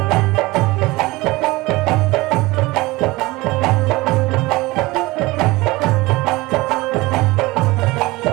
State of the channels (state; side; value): quieter; left; 21.3 dB